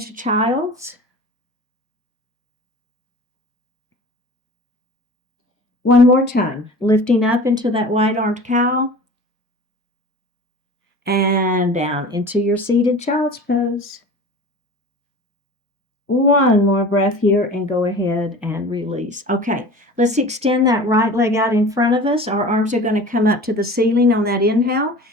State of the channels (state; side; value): normal; both; correlation 0.39